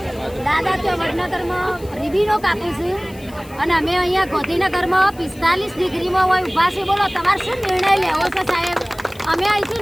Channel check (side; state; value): left; noise; hiss, 23 dB below the sound